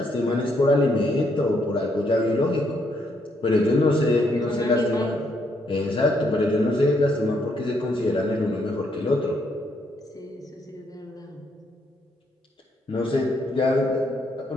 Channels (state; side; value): normal; both; correlation 0.74